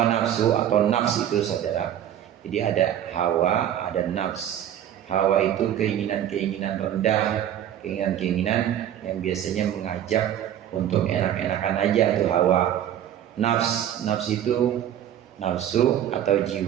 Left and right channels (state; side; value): quieter; left; 10.7 dB